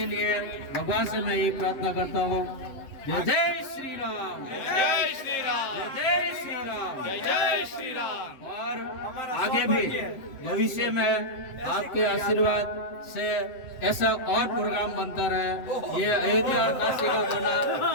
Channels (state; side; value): late; right; 7.8 ms